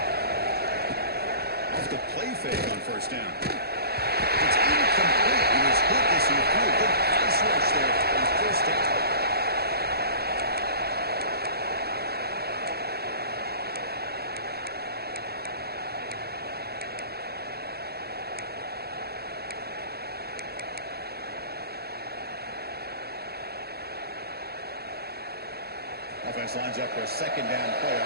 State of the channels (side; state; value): left; late; 0.46 ms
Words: Off the play fake on first down. It's incomplete. He was hit as he threw a good pass rush there on first down. Offense lines up for a 2nd down play